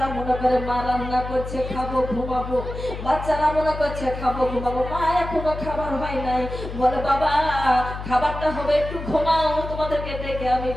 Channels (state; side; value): noise; left; hum, 8 dB below the sound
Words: মনে করে মা রান্না করছে খাবো ঘুমাবো, বাচ্চারা মনে করছে খাবো ঘুমাবো, মা এখনো খাবার হয় নাই। বলে বাবা খাবারটা হবে, একটু ঘুমাও, তোমাদেরকে ডেকে আমি